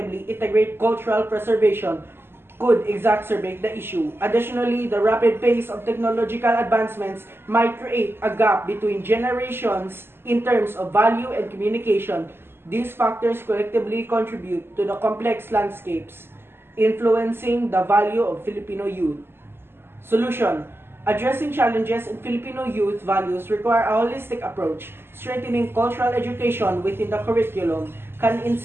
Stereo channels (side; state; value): left; late; 0.11 ms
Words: integrate cultural preservation could exacerbate the issue. Additionally, the rapid pace of technological advancements might create a gap between generations in terms of value and communication. These factors collectively contribute to the complex landscapes influencing the value of Filipino youth. Solution: addressing challenges in Filipino youth values require a holistic approach. Strengthening cultural education within the curriculum can